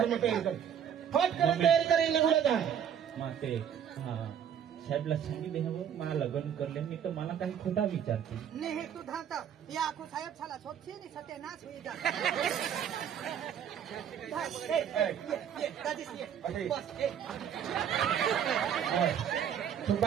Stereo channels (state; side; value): quieter; left; 8.8 dB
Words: में तयारी कर फट कर तयारी करेल गुलागा माते हा साहेबला सांगितले हवं मला लग्न करले मी तर मला काही खोटा विचारते नाही तू धाता या आखो साहेब छाला सोपशी नि सत्यानाश होई जा तू